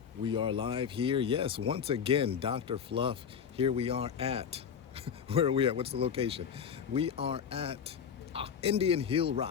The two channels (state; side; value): quieter; right; 7.4 dB